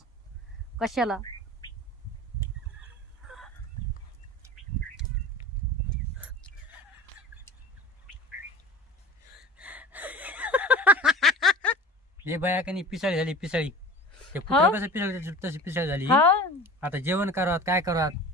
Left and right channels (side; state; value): both; normal; correlation 0.39